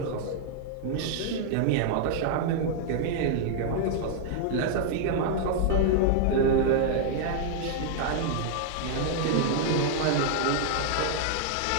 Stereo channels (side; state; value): both; different; correlation -0.01